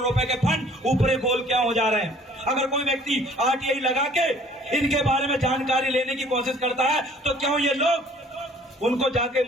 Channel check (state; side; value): normal; both; correlation 0.55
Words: के फंड ऊपरी गोल क्या हो जा रहे हैं? अगर कोई व्यक्ति आरटीआई लगा के इनके बारे में जानकारी लेने की कोशिश करता है तो क्यों ये लोग उनको जाके